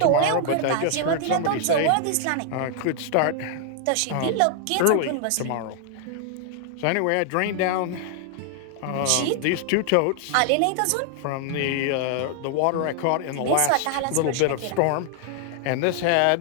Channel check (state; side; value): different; both; correlation 0.00